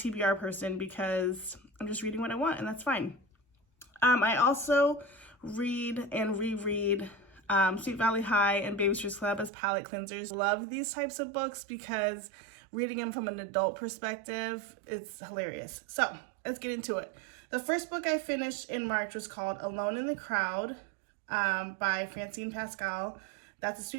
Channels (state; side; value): drops out; left; at 9.5 s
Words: person because I'm just reading what I want, and that's fine. I also read and reread Sweet Valley High and Babysitter's Club as palate cleansers. Love these types of books because reading them from an adult perspective, it's hilarious. So let's get into it. The first book I finished in March was called Alone in the Crowd by Francine Pascal. That's a